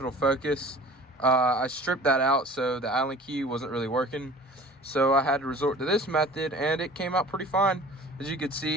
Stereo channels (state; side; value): normal; both; correlation 0.43